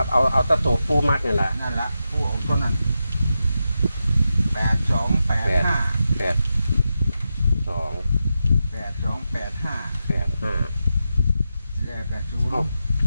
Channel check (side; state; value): both; inverted; correlation -0.89